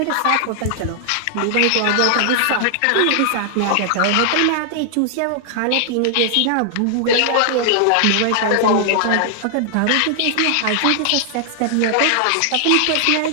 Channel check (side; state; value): both; different; correlation 0.00